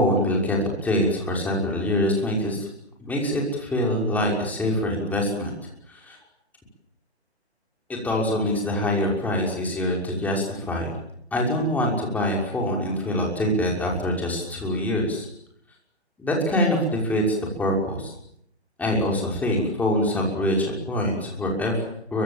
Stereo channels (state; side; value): normal; both; correlation 0.08